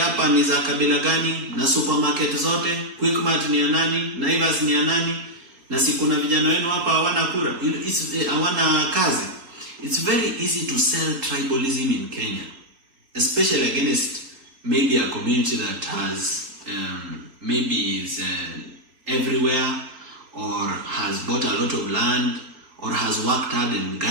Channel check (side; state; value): left; late; 3.8 ms